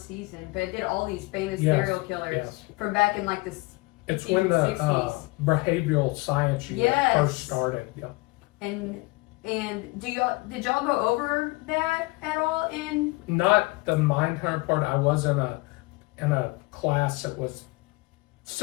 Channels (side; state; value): right; quieter; 24.3 dB